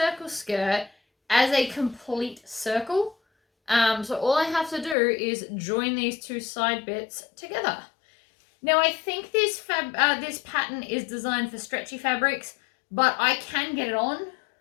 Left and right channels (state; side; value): drops out; right; at 5.0 s